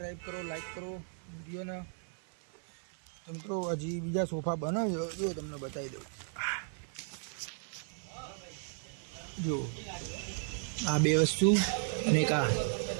કરો, લાઈક કરો વિડીયોને। તો મિત્રો હજી બીજા સોફા બને છે, જો તમને બતાવી દઉં। જો આ બે વસ્તુ અને એક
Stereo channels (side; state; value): left; silent; 54 dB below the other